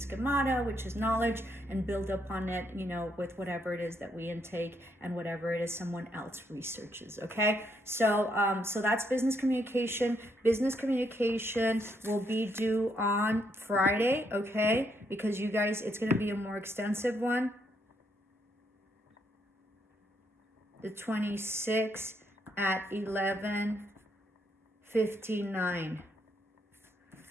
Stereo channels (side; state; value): both; normal; correlation 0.75